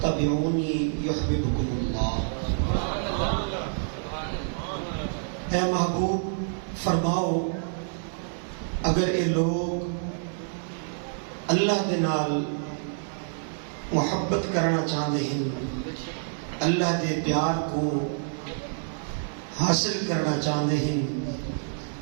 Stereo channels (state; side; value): silent; left; digital silence